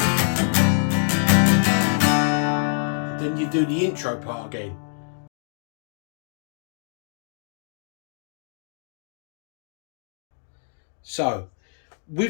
Then you do the intro part again. So,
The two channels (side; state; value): right; silent; digital silence